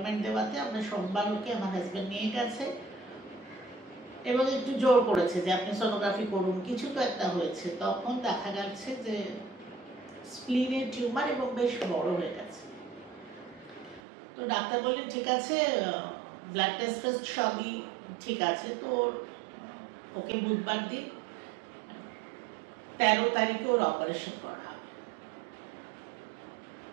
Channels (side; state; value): left; drops out; at 14.0 s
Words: দেওয়াতে আমরা সোমবার ওকে আমার হাজব্যান্ড নিয়ে গেছে এবং একটু জোর করেছে যে আপনি সোনোগ্রাফি করুন, কিছু তো একটা হয়েছে। তখন দেখা যাচ্ছে যে স্প্লিনের টিউমার এবং বেশ বড় হয়ে গেছে। তো ডাক্তার বললেন ঠিক আছে, ব্লাড টেস্ট সবই ঠিক আছে, তো ওকে বুধবার দিন 13 তারিখে ওর অপারেশন করা হবে।